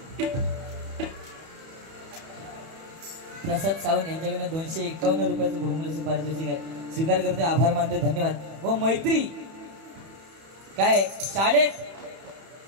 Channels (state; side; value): late; left; 31 ms